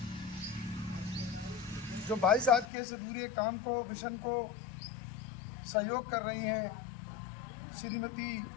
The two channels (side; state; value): right; drops out; at 2.7 s